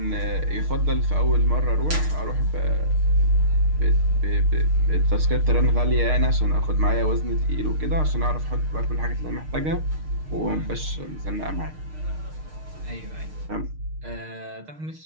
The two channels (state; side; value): late; left; 6.5 ms